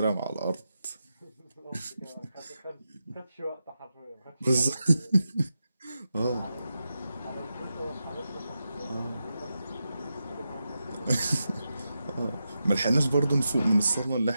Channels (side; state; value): both; inverted; correlation -0.89